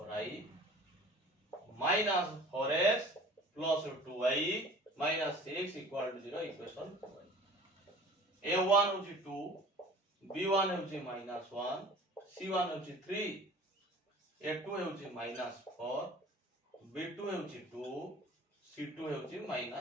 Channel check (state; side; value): normal; both; correlation 0.45